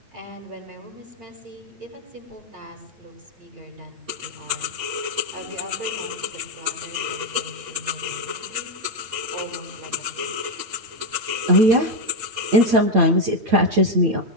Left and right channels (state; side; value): late; left; 8.6 ms